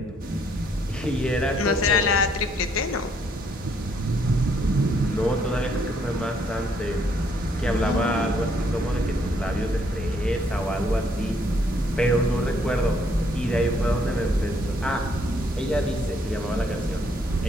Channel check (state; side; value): normal; both; correlation 0.69